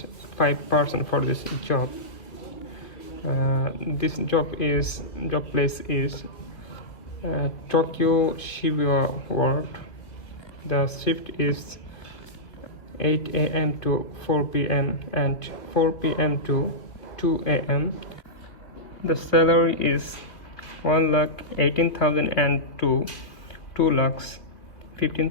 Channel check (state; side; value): late; right; 2.6 ms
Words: 5% for this job. This job place is Tokyo Shibuya Ward. The shift is 8 a.m. to 4 p.m. and 4 p.m. to 2 a.m. The salary is 1,18,000 and